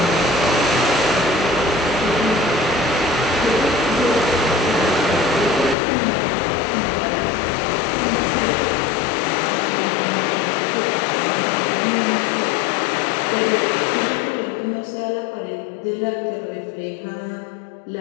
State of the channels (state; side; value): drops out; right; at 5.8 s